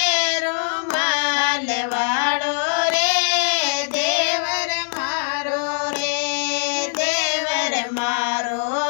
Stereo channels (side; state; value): right; silent; 65 dB below the other